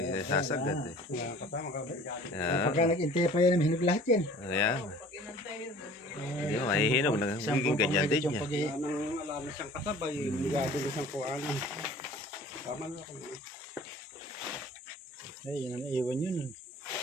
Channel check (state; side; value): normal; both; correlation 0.48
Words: eh. Wala kasama ka. Yeah. Pagka nag-intay pa yan, hinog lahat yan. Ayan. Pag inantay yun, Hindi mo, mahihinog. Nagiging ganyan din niya. Wala na siyang kasabay. Ligado na siyang kuhanan. Tama na ako. Ay, yun ang iwan yun.